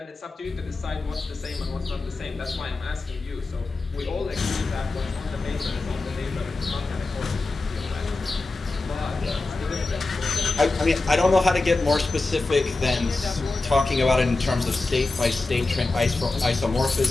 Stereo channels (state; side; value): quieter; right; 3.4 dB